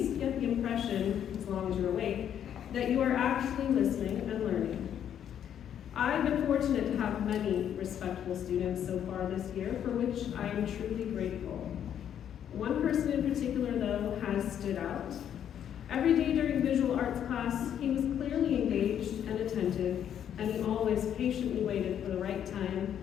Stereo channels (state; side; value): quieter; right; 9.5 dB